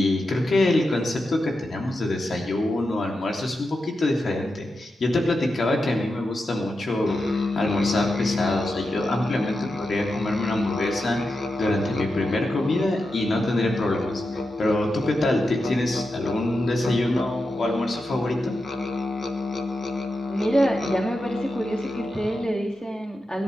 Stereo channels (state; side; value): normal; both; correlation 0.89